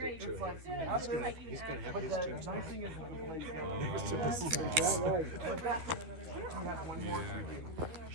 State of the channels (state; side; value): late; left; 12 ms